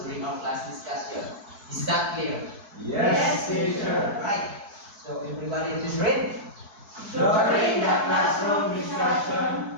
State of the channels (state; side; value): late; left; 4.6 ms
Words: our class discussion. Is that clear? Yes, teacher. Right. So everybody is ready? During the classroom